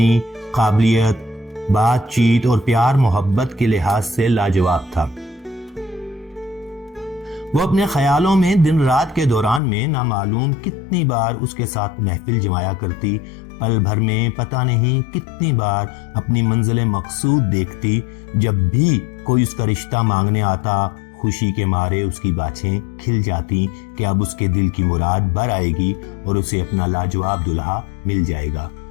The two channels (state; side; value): drops out; right; at 9.6 s